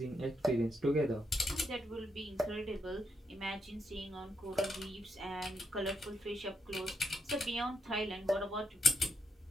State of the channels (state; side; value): normal; both; correlation 0.79